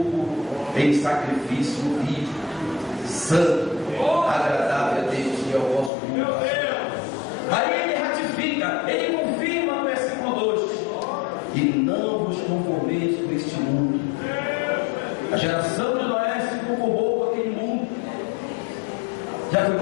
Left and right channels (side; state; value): right; drops out; at 5.9 s